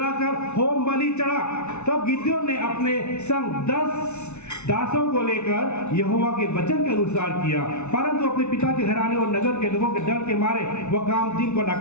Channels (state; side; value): late; right; 0.82 ms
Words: होम बलि चढ़ा। तब गिदोन ने अपने संग 10 दासों को लेकर यहोवा के वचन के अनुसार किया, परंतु अपने पिता के घराने और नगर के लोगों के डर के मारे वह काम दिन को न